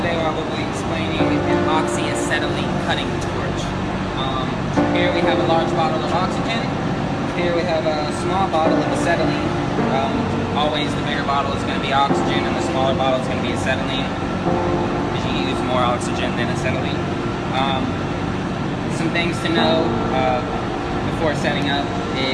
today I will be explaining an oxyacetylene cutting torch. Here we have a large bottle of oxygen. Here we have a small bottle of acetylene. Always the bigger bottle is going to be oxygen, and the smaller bottle is going to be acetylene, because you use more oxygen than acetylene. Some things to know before setting up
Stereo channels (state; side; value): identical; both; correlation 1.00